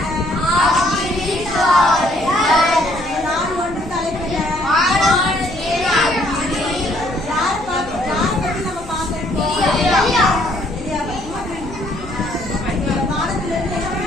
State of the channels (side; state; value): left; noise; hum, 19 dB below the sound